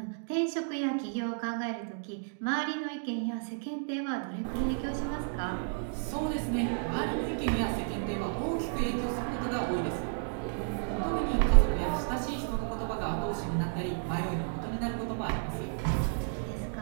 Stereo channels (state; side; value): silent; left; digital silence